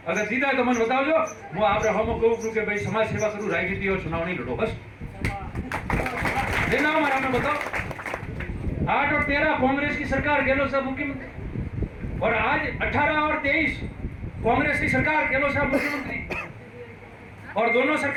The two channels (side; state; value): both; identical; correlation 1.00